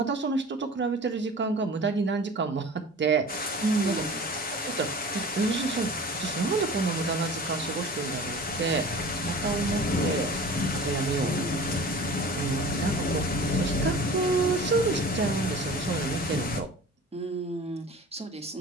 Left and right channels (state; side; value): normal; both; correlation 0.40